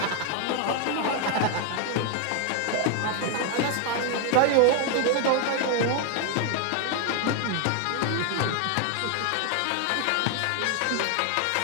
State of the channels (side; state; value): both; different; correlation 0.00